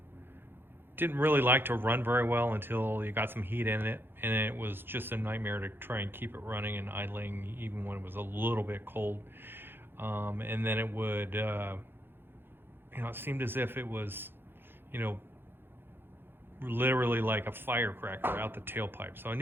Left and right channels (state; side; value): late; left; 0.10 ms